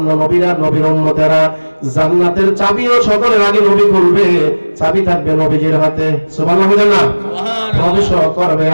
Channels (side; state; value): both; inverted; correlation -1.00